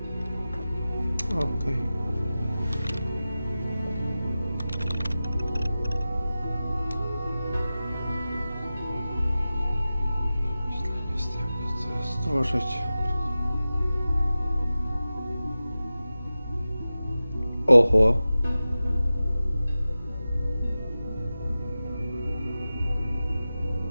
Okej. Stworzyć. Oho.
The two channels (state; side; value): inverted; both; correlation -0.95